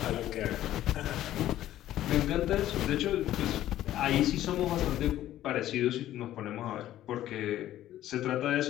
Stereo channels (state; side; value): quieter; right; 13.3 dB